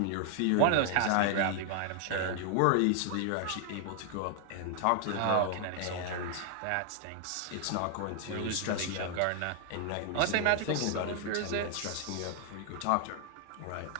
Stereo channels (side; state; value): both; different; correlation 0.00